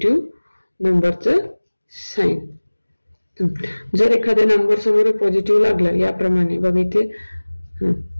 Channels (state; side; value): inverted; both; correlation -1.00